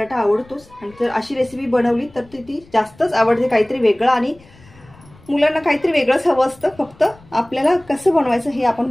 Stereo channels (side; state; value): left; noise; rumble, 26 dB below the sound